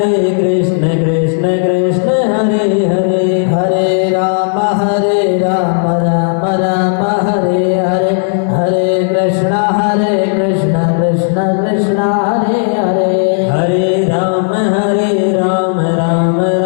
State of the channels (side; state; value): right; silent; digital silence